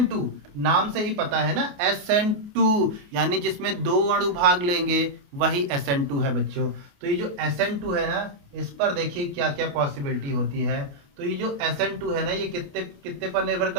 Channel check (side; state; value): left; late; 28 ms